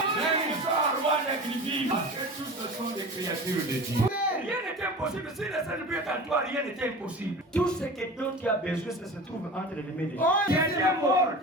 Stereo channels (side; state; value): both; normal; correlation 0.34